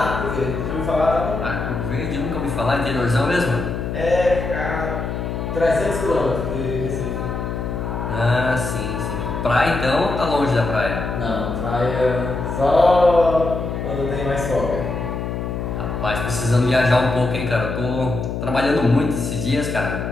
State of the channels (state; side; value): noise; left; hum, 4 dB below the sound